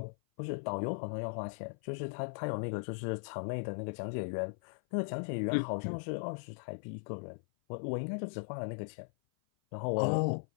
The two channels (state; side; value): silent; right; 52 dB below the other